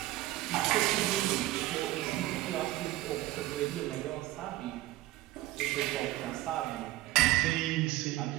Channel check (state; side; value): quieter; left; 16.3 dB